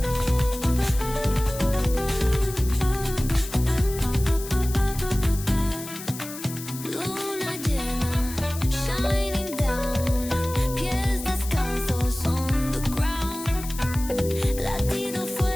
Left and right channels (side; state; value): left; noise; hiss, 12 dB below the sound